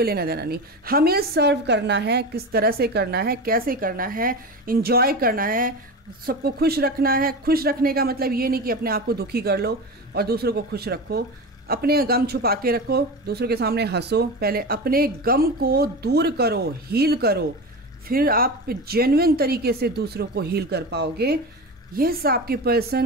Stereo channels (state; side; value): normal; both; correlation 0.25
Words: लेना देना नहीं, हमें सर्व करना है, किस तरह से करना है, कैसे करना है, इंजॉय करना है, सबको खुश रखना है। खुश रखने का मतलब ये नहीं कि अपने आप को दुखी कर लो और दूसरों को खुश रखो, अपने गम छुपा के रखो, दूसरों के सामने हंसो, पहले अपने गम को दूर करो, हील करो, फिर आप जेन्युइन तरीके से दूसरों को हील कर पाओगे। यस, आपके